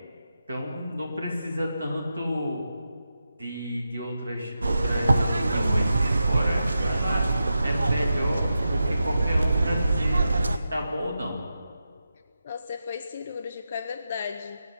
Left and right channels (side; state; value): both; inverted; correlation -0.89